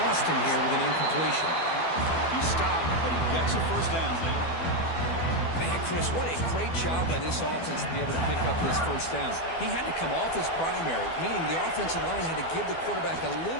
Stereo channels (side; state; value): right; late; 12 ms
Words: him here with an incompletion. He stopped, but he gets a first down. Man, Chris, what a great job by this offense to be able to pick up this first down. He had to come off his primary, meaning the offensive line had to give the quarterback a